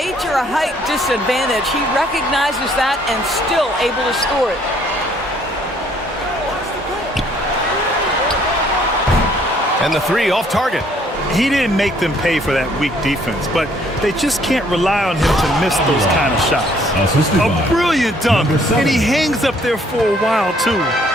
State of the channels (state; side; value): normal; both; correlation 0.63